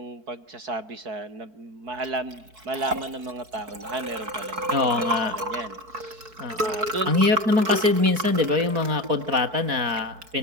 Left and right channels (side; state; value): left; late; 4.6 ms